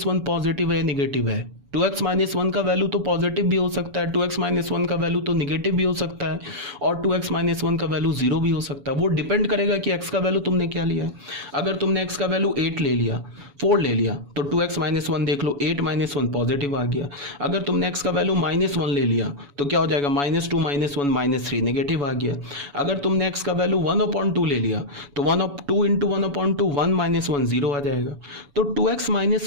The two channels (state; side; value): late; left; 7.0 ms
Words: 1 पॉजिटिव है या निगेटिव है। 2x - 1 का वैल्यू तो पॉजिटिव भी हो सकता है, 2x - 1 का वैल्यू तो निगेटिव भी हो सकता है, और 2x - 1 का वैल्यू 0 भी हो सकता है। वो डिपेंड करेगा कि x का वैल्यू तुमने क्या लिया है। अगर तुमने x का वैल्यू 8 ले लिया, 4 ले लिया, तो 2x - 1 देख लो, 8 - 1 पॉजिटिव आ गया। अगर तुमने x का वैल्यू -1 ले लिया तो क्या हो जाएगा? -2 - 1 -3 नेगेटिव आ गया। अगर तुमने x का वैल्यू 1/2 ले लिया तो 2 इंटू 1/2 1 - 1 0 आ जाएगा। तो 2x